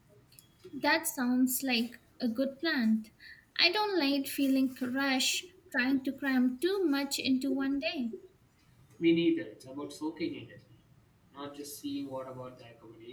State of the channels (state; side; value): identical; both; correlation 1.00